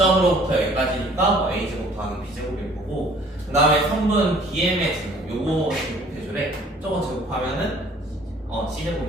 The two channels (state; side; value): normal; both; correlation 0.55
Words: 여기까지니까 뭐 A제곱 더하기 B제곱일 거고, 그 다음에 선분 BM의 제곱, 요거 제곱해주래. 저거 제곱하면은